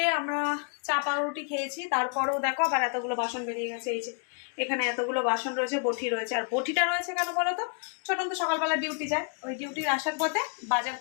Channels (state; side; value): quieter; right; 38.6 dB